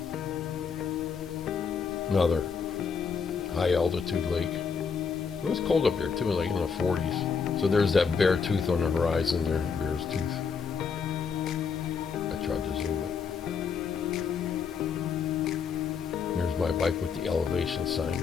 Another high altitude lake. It was cold up here too, like in the 40s. So there's that bear tooth on the horizon there, bear's tooth. I tried to zoom it. There's my bike with the elevation sign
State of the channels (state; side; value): quieter; right; 6.0 dB